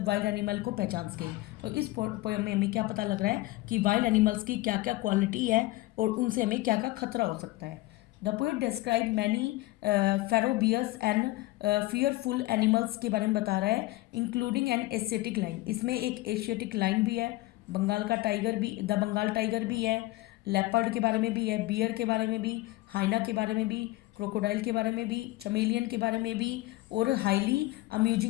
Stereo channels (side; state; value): right; quieter; 19.0 dB